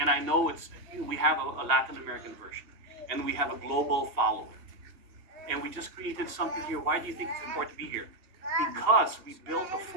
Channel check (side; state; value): left; late; 2.8 ms